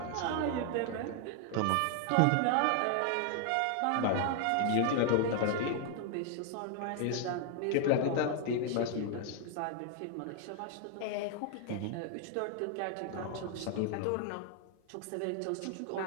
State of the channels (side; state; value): both; different; correlation 0.00